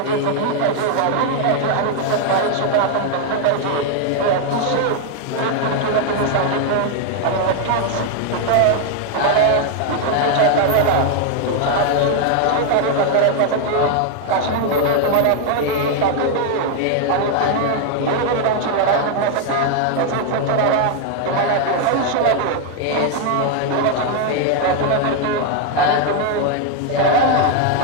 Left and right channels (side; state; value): both; different; correlation 0.00